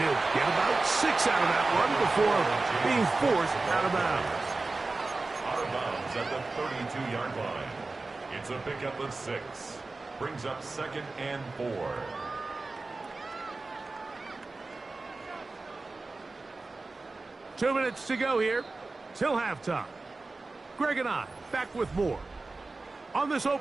he'll get about 6 out of that one before being forced out of bounds. Out of bounds at the 32-yard line. It's a pickup of 6. Brings up 2nd and 4. Two minutes to go here till halftime. Greg and I back with more on this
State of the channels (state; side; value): quieter; left; 3.5 dB